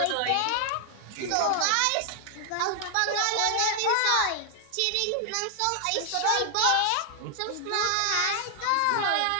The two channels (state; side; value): different; both; correlation 0.00